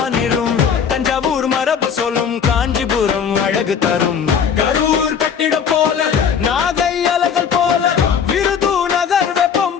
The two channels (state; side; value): quieter; right; 7.2 dB